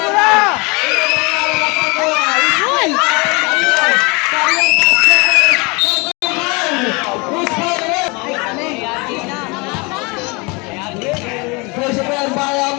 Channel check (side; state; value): right; quieter; 28.0 dB